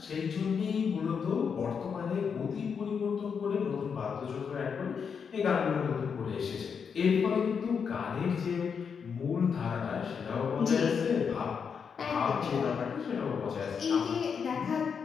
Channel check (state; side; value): quieter; right; 6.4 dB